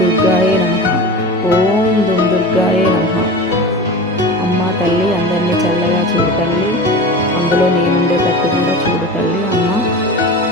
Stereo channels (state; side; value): normal; both; correlation 0.32